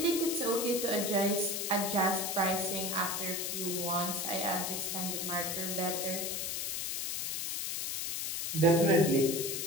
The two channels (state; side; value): noise; left; hiss, 2 dB below the sound